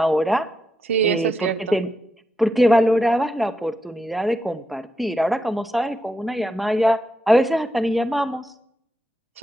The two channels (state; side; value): normal; both; correlation 0.84